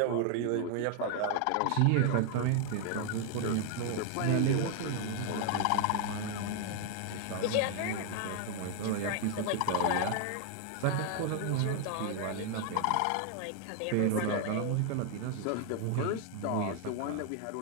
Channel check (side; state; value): both; different; correlation 0.00